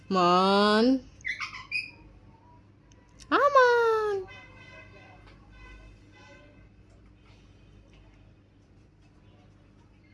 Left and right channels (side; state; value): both; identical; correlation 1.00